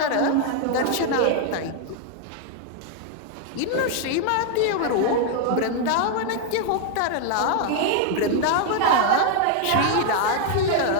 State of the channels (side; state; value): both; different; correlation 0.00